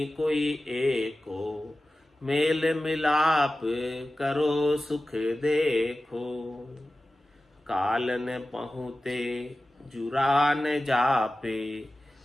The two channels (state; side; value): normal; both; correlation 0.95